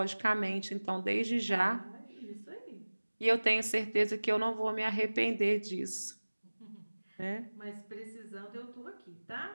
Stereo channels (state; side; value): inverted; both; correlation -1.00